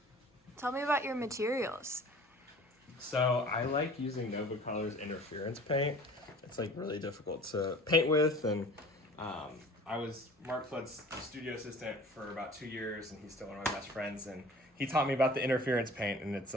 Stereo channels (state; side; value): normal; both; correlation 0.46